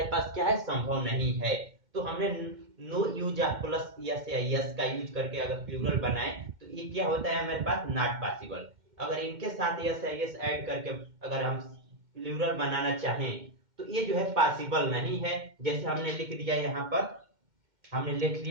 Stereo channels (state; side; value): late; left; 2.1 ms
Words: पास क्या है, संभव नहीं है। तो हमने no use of plus es या यस का यूज करके अगर प्लूरल बनाए तो ये क्या होता है, हमारे पास नॉट पॉसिबल। अगर इनके साथ यस या यस ऐड करके अगर हम प्लूरल बनाना चाहें तो ये जो है पॉसिबल नहीं है। जैसे हमने लिख दिया यहाँ पर, हमने लिख